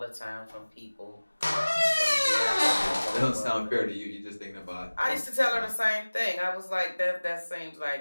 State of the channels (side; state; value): both; inverted; correlation -1.00